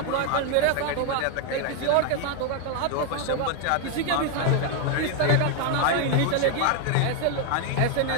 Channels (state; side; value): different; both; correlation 0.01